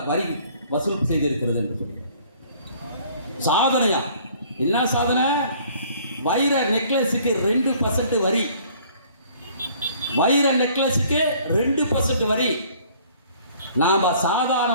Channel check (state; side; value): inverted; both; correlation -0.56